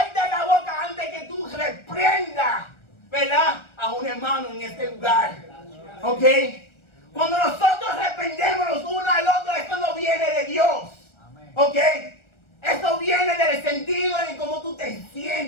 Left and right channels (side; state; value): right; late; 1.3 ms